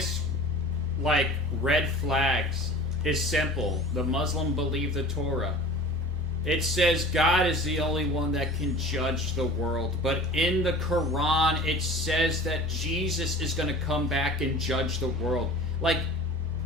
like, red flags is simple. The Muslim believe the Torah. It says God is the only one that can judge the world. But in the Quran, it says that Jesus is going to come back and judge the world. Like,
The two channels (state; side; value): normal; both; correlation 0.40